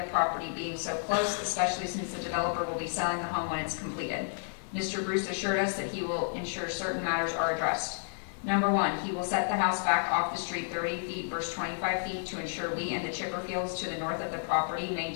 property being so close, especially since the developer will be selling the home when it's completed. Mr. Bruce assured us that he will ensure certain matters are addressed. Number 1, he will set the house back off the street 30 feet versus 25 feet to ensure we and the Chipperfields to the north of the property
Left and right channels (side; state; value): right; silent; 57 dB below the other